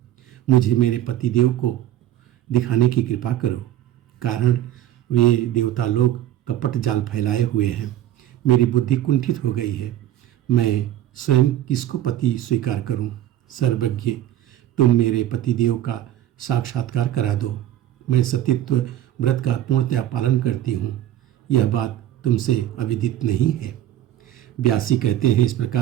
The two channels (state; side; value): quieter; left; 12.5 dB